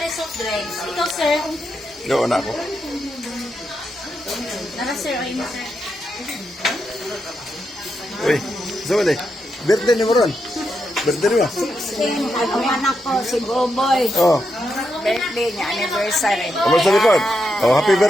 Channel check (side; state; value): both; normal; correlation 0.84